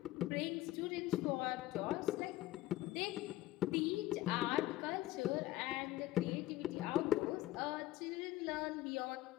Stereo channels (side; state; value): right; quieter; 16.0 dB